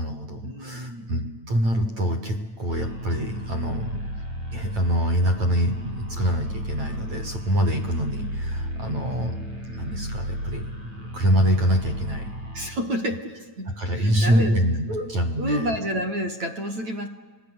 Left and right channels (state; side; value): late; left; 9.0 ms